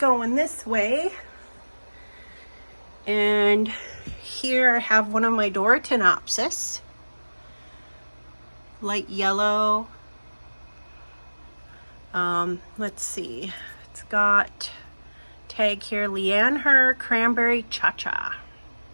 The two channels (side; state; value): both; inverted; correlation -1.00